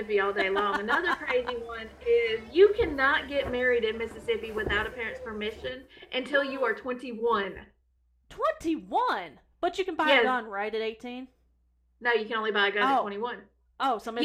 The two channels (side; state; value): both; identical; correlation 1.00